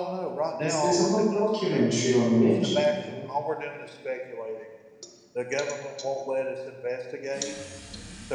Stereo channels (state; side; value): identical; both; correlation 1.00